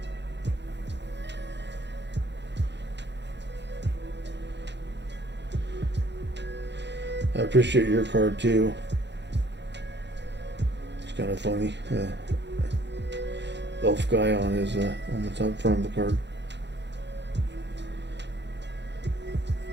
I appreciate your card too. It's kind of funny. Elf guy on his on the top front of the card.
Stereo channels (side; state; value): left; late; 0.51 ms